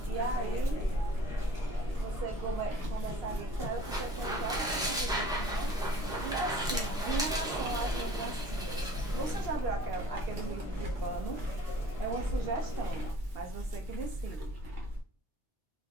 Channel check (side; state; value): both; normal; correlation 0.50